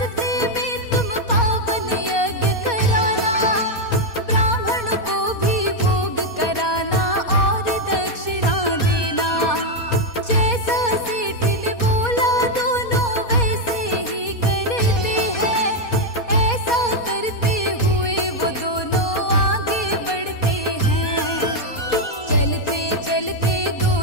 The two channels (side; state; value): right; late; 4.2 ms